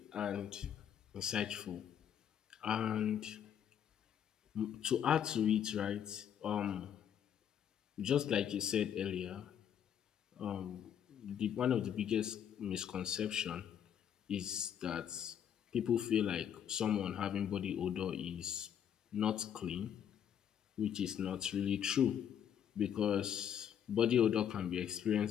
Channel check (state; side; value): quieter; right; 9.1 dB